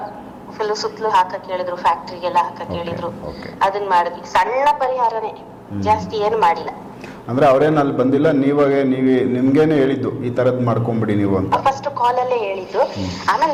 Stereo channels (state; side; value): identical; both; correlation 1.00